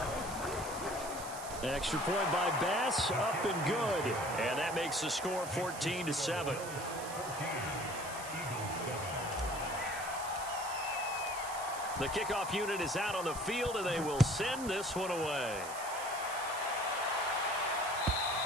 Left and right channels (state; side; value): noise; right; hiss, 11 dB below the sound